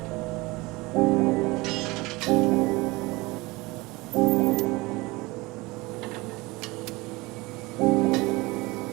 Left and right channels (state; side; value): quieter; left; 22.7 dB